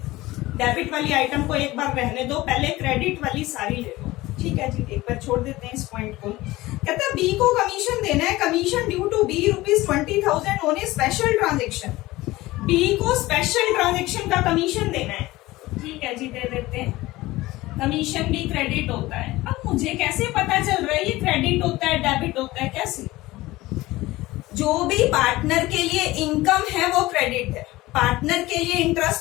डेबिट वाली आइटम को एक बार रहने दो, पहले क्रेडिट वाली सारी ले लो। ठीक है जी, एक बार छोड़ देते हैं इस पॉइंट को। कहता है बी को कमीशन देना है, commission due to B ₹20,000 on a special transaction. B को स्पेशल ट्रांजेक्शन का कमीशन देना है। ठीक है जी, दे देते हैं। कमीशन भी क्रेडिट होता है। अब मुझे कैसे पता चल रहा है ये क्रेडिट होता है डेबिट होता है, कैसे? जो भी पार्टनर के लिए इनकम है वो क्रेडिट है। पार्टनर के लिए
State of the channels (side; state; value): right; quieter; 18.7 dB